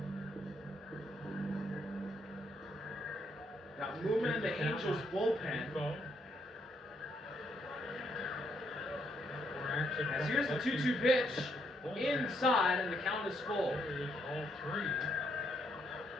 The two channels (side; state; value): both; normal; correlation 0.74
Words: Got movement in the Angels bullpen. As here's the 2-2 pitch inside, and the count is full. All 3.